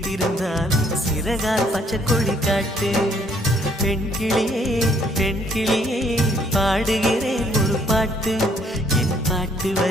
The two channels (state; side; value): normal; both; correlation 0.65